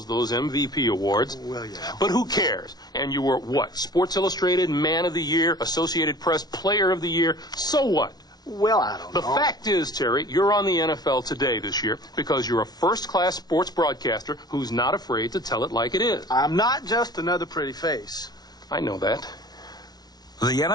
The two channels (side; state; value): right; late; 0.19 ms